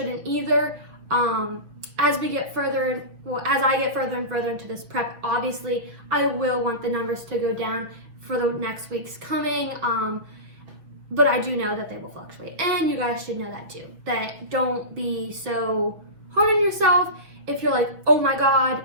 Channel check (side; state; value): left; late; 6.3 ms